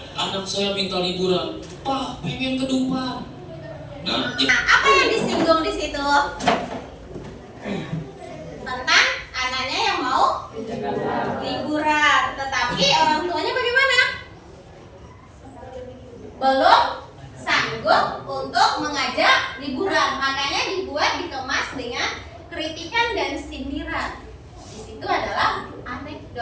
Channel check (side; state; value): both; identical; correlation 1.00